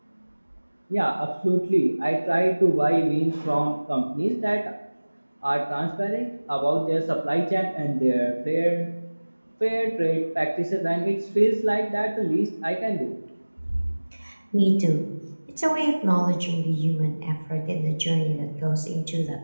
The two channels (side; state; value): both; inverted; correlation -1.00